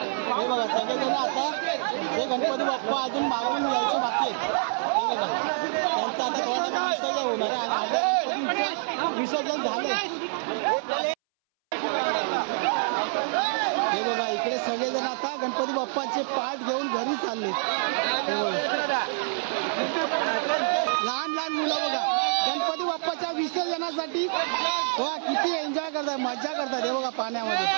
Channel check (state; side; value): silent; left; 60 dB below the other